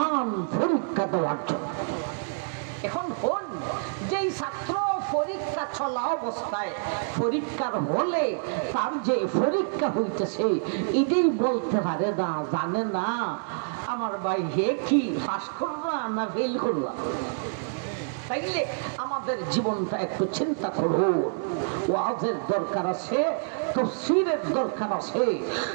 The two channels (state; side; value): silent; left; digital silence